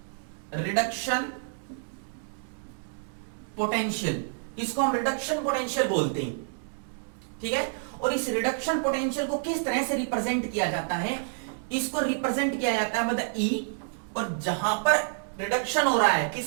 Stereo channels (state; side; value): silent; left; digital silence